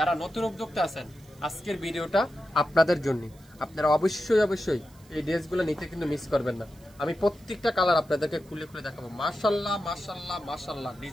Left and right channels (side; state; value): right; noise; hiss, 28 dB below the sound